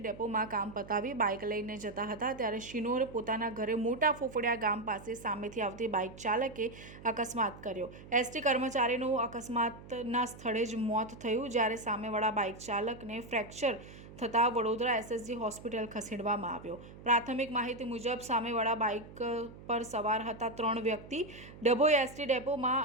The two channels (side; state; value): right; noise; hum, 17 dB below the sound